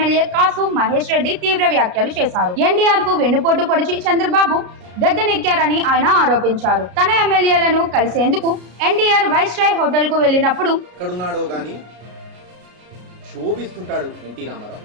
కాసు మహేష్ రెడ్డి తీవ్ర వ్యాఖ్యలు చేశారు. ఎన్టీఆర్ కు వెన్నుపోటు పొడిచి చంద్రబాబు గద్దెనెక్కారని ఆయన ఆరోపించారు. తన ఎమ్మెల్యేలను కలిసేందుకు ఎన్టీఆర్ వైస్రాయ్ హోటల్ కు వెళ్లినప్పుడు ఎక్కడున్నాడో గాని శోభిస్తుంటాడు ఎన్టీ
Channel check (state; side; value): late; left; 33 ms